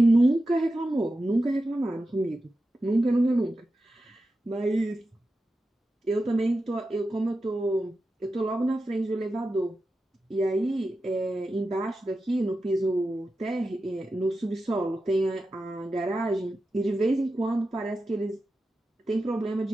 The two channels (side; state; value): both; normal; correlation 0.91